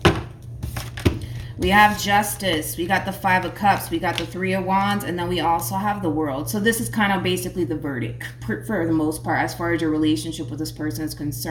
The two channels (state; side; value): identical; both; correlation 1.00